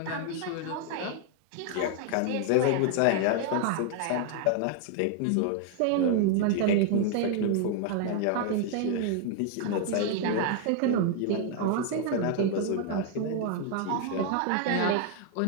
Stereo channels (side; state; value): both; different; correlation 0.00